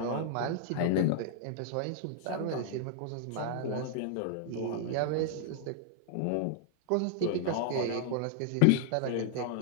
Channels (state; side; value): different; both; correlation -0.01